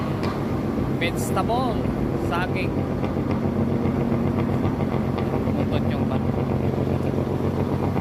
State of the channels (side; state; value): both; identical; correlation 1.00